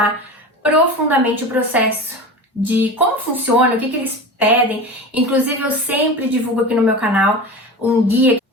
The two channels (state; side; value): normal; both; correlation 0.30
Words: profundamente o processo de como funciona, o que eles pedem. Inclusive, eu sempre divulgo aqui no meu canal um guia,